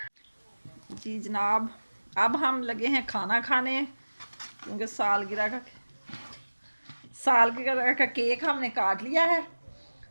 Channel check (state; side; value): inverted; both; correlation -1.00